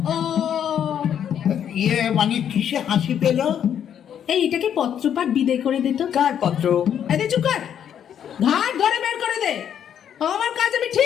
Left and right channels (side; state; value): right; quieter; 9.2 dB